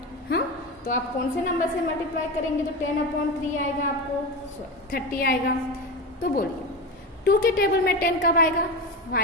हाँ, तो आप कौन से नंबर से मल्टीप्लाई करेंगे तो 10/3 आएगा, आपको 30 आएगा। तो बोलिए 2 के टेबल में 10 कब आएगा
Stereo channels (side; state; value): both; normal; correlation 0.22